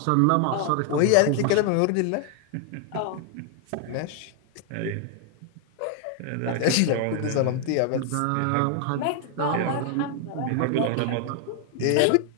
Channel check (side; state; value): both; different; correlation 0.00